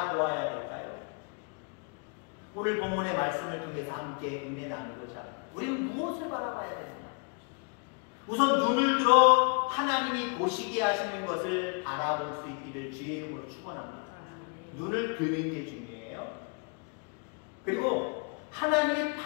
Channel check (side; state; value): right; quieter; 36.2 dB